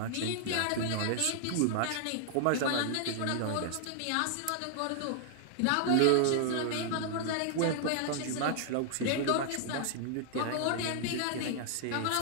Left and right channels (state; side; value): different; both; correlation 0.00